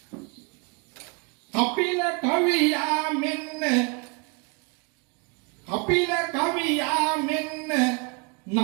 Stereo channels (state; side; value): quieter; left; 32.4 dB